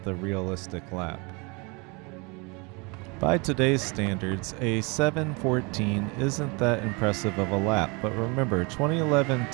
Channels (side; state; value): left; quieter; 29.3 dB